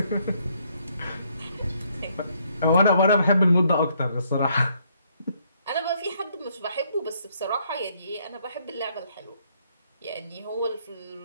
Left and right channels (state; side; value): inverted; both; correlation -0.70